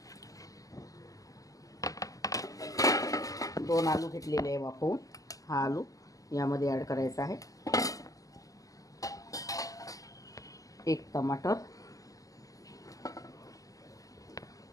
2 आलू घेतलेले आहे वाफवून। हा आलू यामध्ये ॲड करायचा आहे। 1 टमाटर,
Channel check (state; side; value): late; right; 0.17 ms